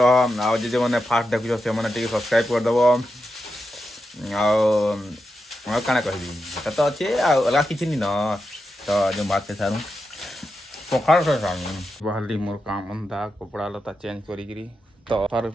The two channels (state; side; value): normal; both; correlation 0.88